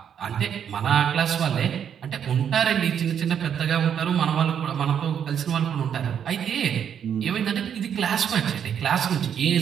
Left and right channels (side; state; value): left; quieter; 8.5 dB